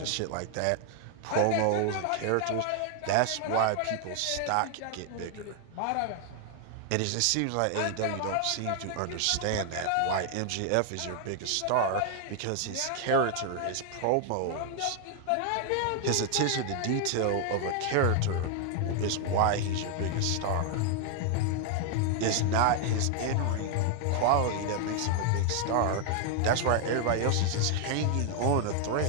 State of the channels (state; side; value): different; both; correlation 0.00